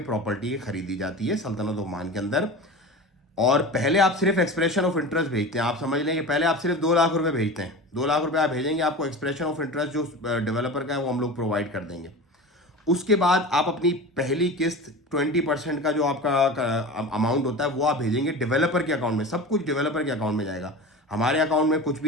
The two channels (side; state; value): both; normal; correlation 0.31